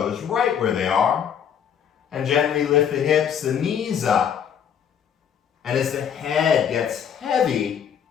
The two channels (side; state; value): right; quieter; 8.2 dB